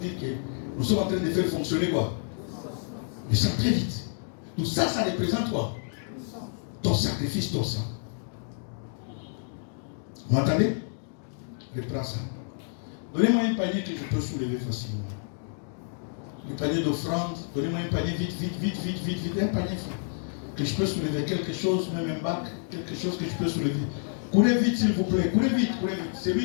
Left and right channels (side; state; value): right; silent; digital silence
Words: que nous sommes en train de faire fonctionner quoi? Le sang très vite. Tout ça, ça représente quoi? Ton sacrifice, ton sang. Vous m'entendez? Reprends ça. Donnez-moi un panier que je peux soulever facilement. Le panier d'offrande. Donnez-moi un panier vite, un panier que je peux soulever. Quelque chose, même un bac, quelque chose que je peux soulever. Courez vite s'il vous plaît, courez vite.